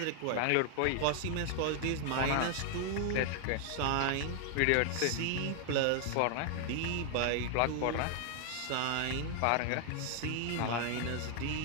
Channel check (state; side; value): different; both; correlation 0.00